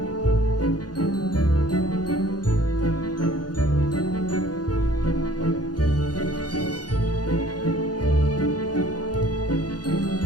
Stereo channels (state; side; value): late; right; 0.69 ms